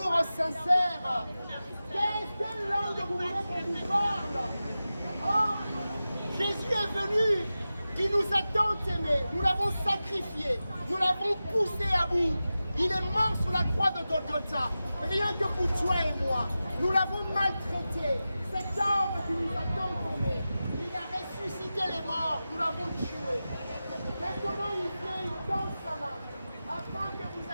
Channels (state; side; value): inverted; both; correlation -0.94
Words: sincère. Quelle langue vous voulez qu'on vous parle? Oh, Jésus est venu. Il nous a tant aimés. Nous l'avons sacrifié. Nous l'avons poussé à bout. Il est mort sur la croix de Golgotha. Rien que pour toi et moi. Nous l'avons maltraité. Cet homme qui nous a tant aimés. Il a ressuscité les morts. Nous l'avons tué. Maintenant, il vient, il tend sa main. Afin que vous